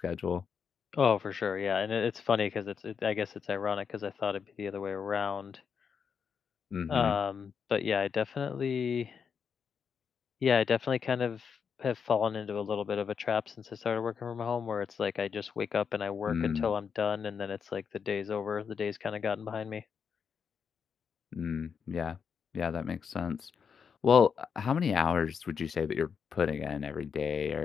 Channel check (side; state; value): right; quieter; 6.6 dB